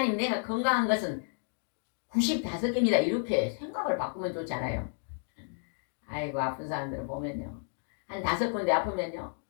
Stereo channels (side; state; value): right; silent; 57 dB below the other